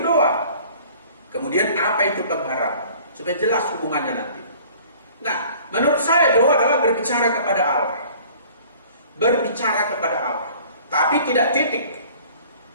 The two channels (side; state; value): both; inverted; correlation -0.51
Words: doa. Kemudian apa itu pengharapan, supaya jelas hubungannya nanti. Nah, menurut saya doa adalah berbicara kepada Allah. Berbicara kepada Allah, tapi tidak titik.